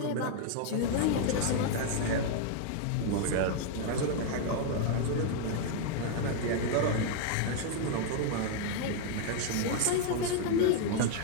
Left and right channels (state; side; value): different; both; correlation 0.00